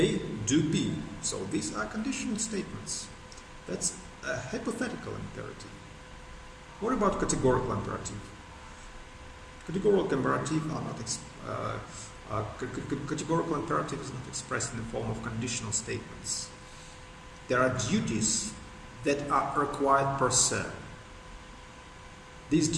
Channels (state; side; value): identical; both; correlation 1.00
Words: do B. So these are conditional statements. That's a hypothetical imperative. What about categorical imperative? Categorical imperative are not categorical imperative is not expressed in the form of conditional statements. There are duties that are required per se. These